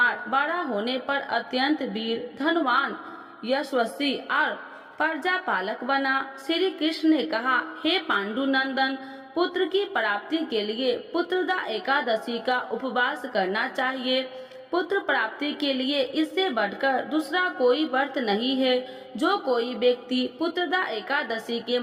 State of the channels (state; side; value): identical; both; correlation 1.00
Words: बड़ा होने पर अत्यंत वीर, धनवान, यशस्वी और प्रजा पालक बना। श्री कृष्ण ने कहा, हे पांडुनंदन, पुत्र की प्राप्ति के लिए पुत्रदा एकादशी का उपवास करना चाहिए। पुत्र प्राप्ति के लिए इससे बढ़कर दूसरा कोई व्रत नहीं है। जो कोई व्यक्ति पुत्रदा एकादशी के